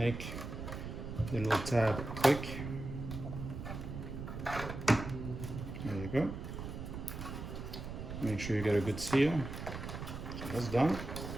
the little tab click. There you go. Make sure you get a good seal. So that's done.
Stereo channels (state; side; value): noise; right; rumble, 7 dB below the sound